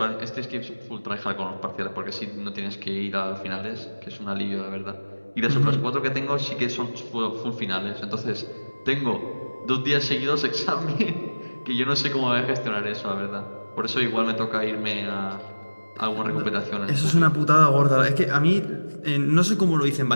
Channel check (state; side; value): inverted; both; correlation -1.00